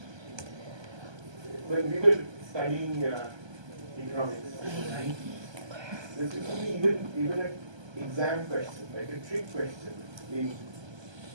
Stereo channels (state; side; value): late; left; 1.3 ms